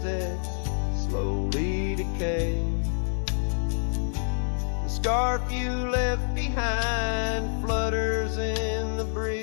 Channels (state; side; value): silent; right; digital silence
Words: slowly decay. The scarf you left behind flutters in the